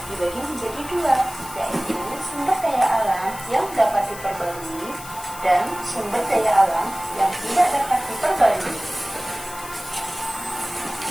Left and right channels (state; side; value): noise; left; hiss, 14 dB below the sound